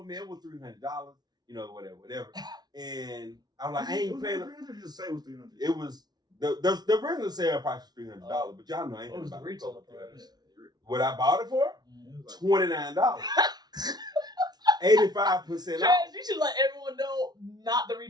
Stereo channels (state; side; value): late; left; 0.19 ms